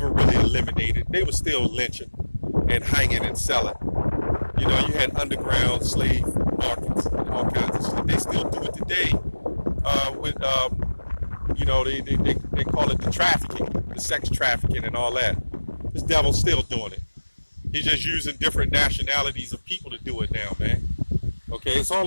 really eliminated. They were still lynching and hanging and selling. You know, you had underground slave markets and all kinds of shit. They still do it today with, you know, they call it the trafficking, the sex trafficking and all that. This devil's still doing it. He's just using different nationalities of people to do it now, man. Okay, it's all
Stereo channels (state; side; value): inverted; both; correlation -1.00